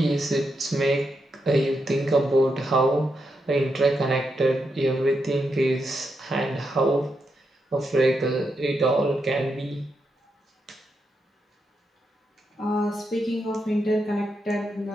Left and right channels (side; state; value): both; normal; correlation 0.83